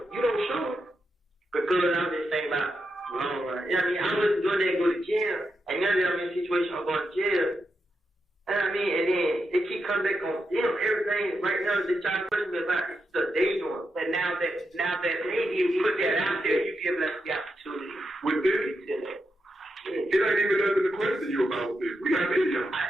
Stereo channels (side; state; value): both; normal; correlation 0.85